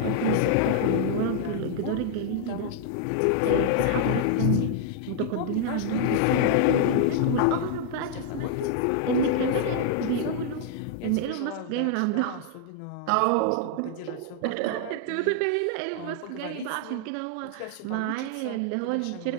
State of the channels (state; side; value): different; both; correlation -0.01